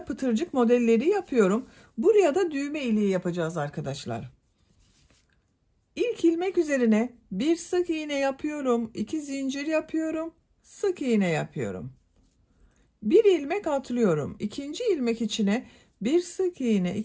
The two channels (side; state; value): both; identical; correlation 1.00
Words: pıtırcık modelleri yapıyorum. Buraya da düğme iliği yapacağız arkadaşlar. İlk ilmek üzerine bir sık iğne yapıyorum, 2 zincir yapıyorum, sık iğne yapıyorum. Bir ilmek atlıyorum. İkinci ilmek içine bir sık iğne,